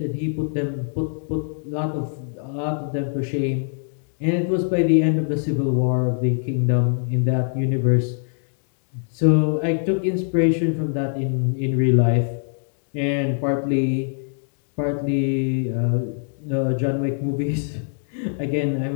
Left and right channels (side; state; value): right; silent; digital silence